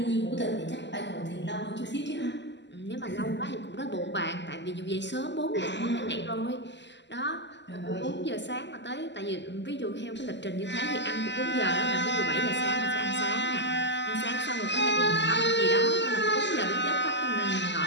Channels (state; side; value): late; right; 0.51 ms